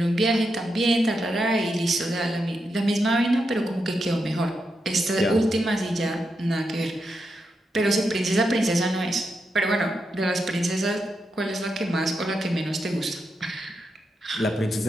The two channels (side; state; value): both; normal; correlation 0.85